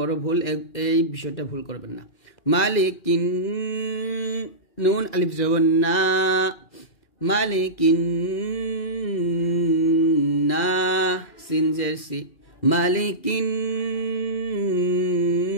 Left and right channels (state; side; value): late; right; 2.4 ms